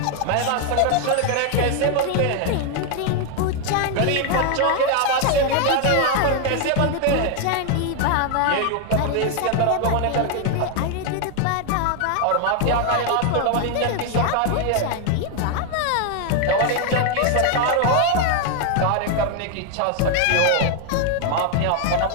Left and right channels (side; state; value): both; different; correlation 0.00